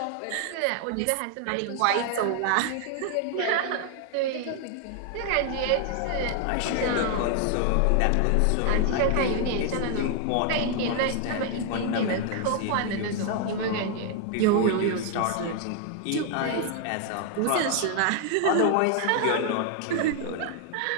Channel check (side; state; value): both; different; correlation 0.00